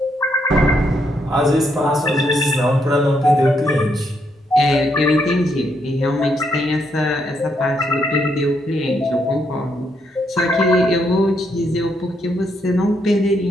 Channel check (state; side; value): normal; both; correlation 0.76